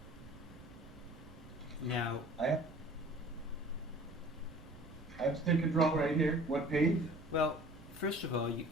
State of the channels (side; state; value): right; noise; rumble, 19 dB below the sound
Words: Now, I have stick control right here. What page? well, first of all,